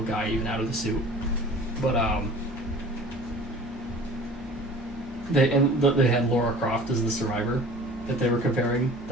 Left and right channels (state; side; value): normal; both; correlation 0.44